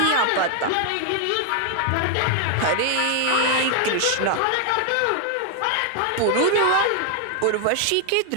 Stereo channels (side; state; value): both; different; correlation 0.00